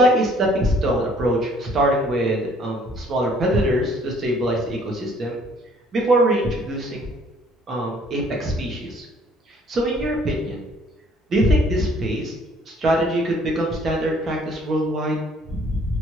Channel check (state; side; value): normal; both; correlation 0.59